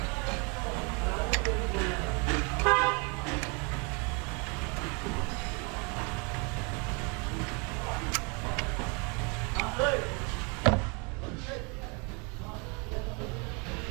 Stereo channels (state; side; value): quieter; left; 32.2 dB